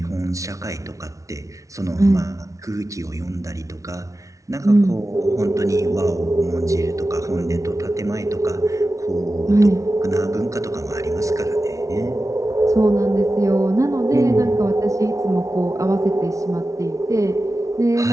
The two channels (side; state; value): left; late; 0.16 ms